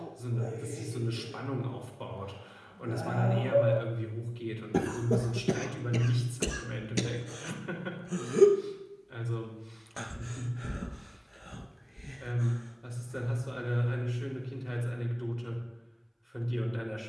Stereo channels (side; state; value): both; identical; correlation 1.00